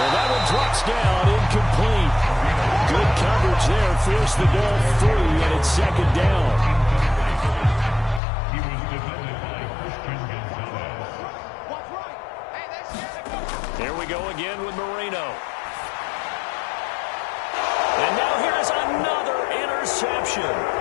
that one drops down, incomplete. Good coverage there, forced the ball free, and it's 2nd down. Here we go again with Marino. And now here's another interception.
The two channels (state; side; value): drops out; right; at 8.2 s